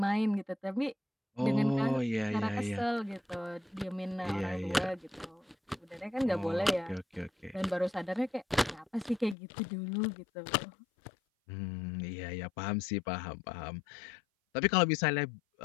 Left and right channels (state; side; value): drops out; right; at 9.3 s